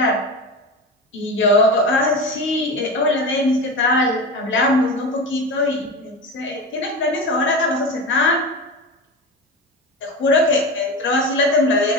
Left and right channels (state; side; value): normal; both; correlation 0.25